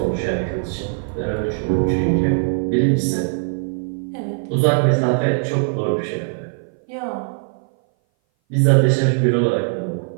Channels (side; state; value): left; silent; 59 dB below the other